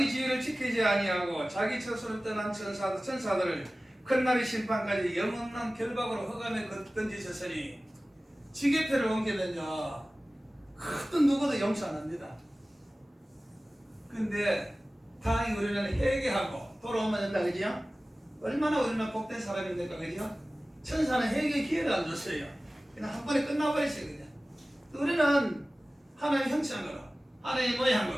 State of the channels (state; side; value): normal; both; correlation 0.97